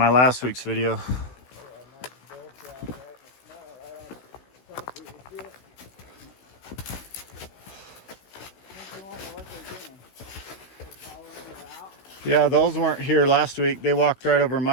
last week's video. Yeah, those weren't here last week. They walked right over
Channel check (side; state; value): right; late; 16 ms